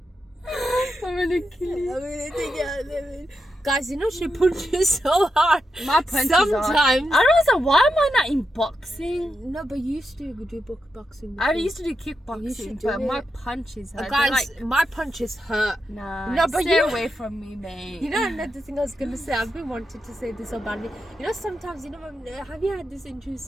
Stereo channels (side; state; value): both; normal; correlation 0.86